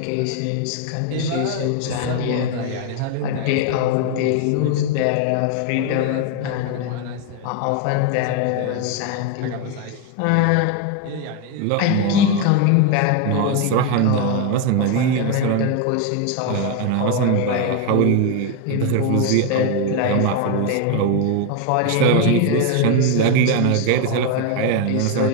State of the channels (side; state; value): both; different; correlation 0.01